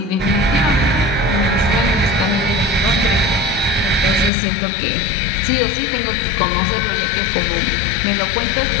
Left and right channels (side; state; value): right; drops out; at 4.3 s